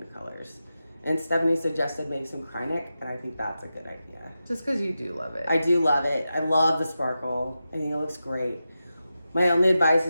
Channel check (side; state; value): both; inverted; correlation -0.91